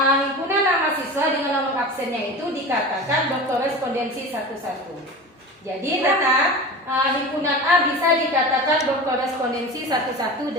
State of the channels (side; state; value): both; normal; correlation 0.32